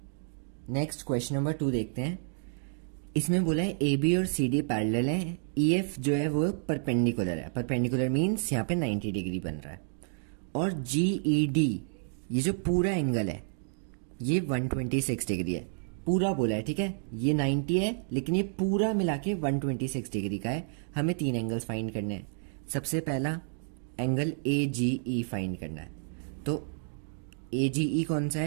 नेक्स्ट क्वेश्चन नंबर 2 देखते हैं। इसमें बोला है ए बी और सी डी पैरेलल है, ई एफ जो है वो परपेंडिकुलर है। परपेंडिकुलर मीन्स यहाँ पे 90 डिग्री बन रहा है, और जी ई डी ये जो पूरा एंगल है ये 126 डिग्री है, पूरा बोला है। ठीक है, ये 90 है लेकिन ये पूरा मिला के 126 डिग्री का है। हमें 3 एंगल्स फाइंड करने हैं। सबसे पहला angle A G E find करना है, तो ए जी ई कौन सा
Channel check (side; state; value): left; silent; digital silence